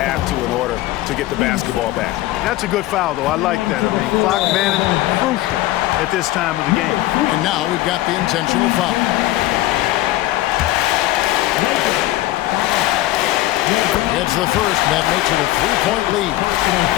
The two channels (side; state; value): right; quieter; 16.4 dB